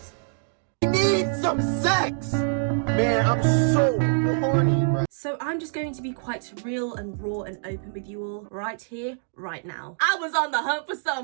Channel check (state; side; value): silent; left; digital silence